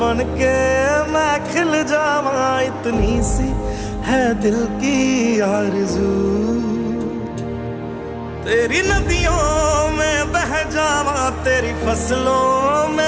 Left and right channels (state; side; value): identical; both; correlation 1.00